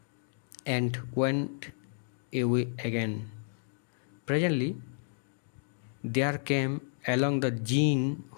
and went away again. Presently, there came along the jinn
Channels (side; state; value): right; silent; digital silence